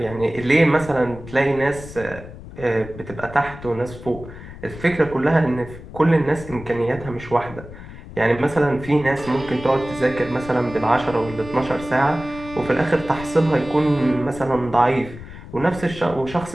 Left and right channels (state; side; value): noise; left; rumble, 14 dB below the sound